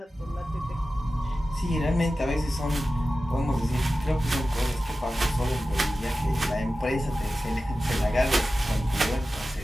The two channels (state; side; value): normal; both; correlation 0.94